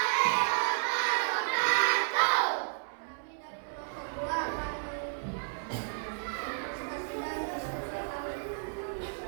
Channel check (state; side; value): silent; left; 56 dB below the other